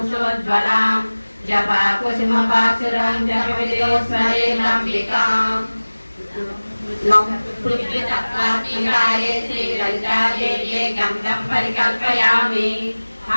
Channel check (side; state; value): both; inverted; correlation -1.00